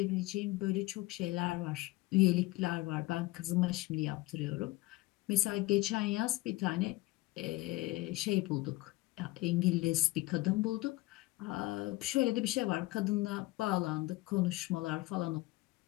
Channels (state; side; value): quieter; right; 20.1 dB